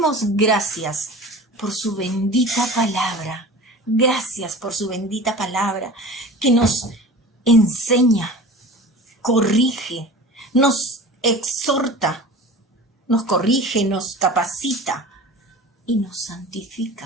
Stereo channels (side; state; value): both; normal; correlation 0.37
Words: gracias por su bendita palabra. Gracias por su bendita palabra que nos enseña, corrige, nos exhorta, nos corrige, nos capacita y nos